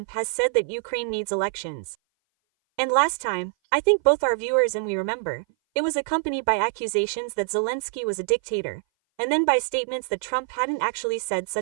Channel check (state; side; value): silent; left; 58 dB below the other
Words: has said that Ukraine needs elections. And last time, I think both our viewers and we remember, it was accompanied by accusations that Zelensky was a dictator, and then by statements that Trump hadn't actually said